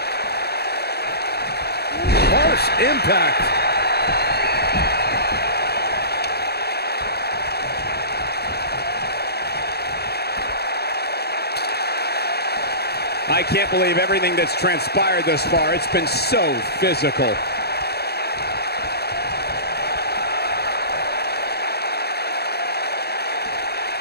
Harsh impact. I can't believe everything that's transpired thus far. It's been so physical.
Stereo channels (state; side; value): late; right; 0.47 ms